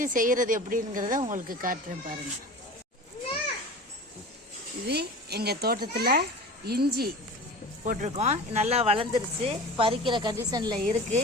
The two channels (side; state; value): both; normal; correlation 0.36